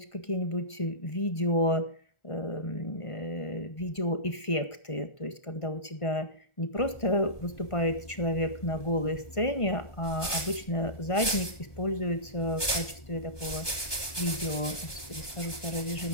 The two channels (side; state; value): right; late; 1.2 ms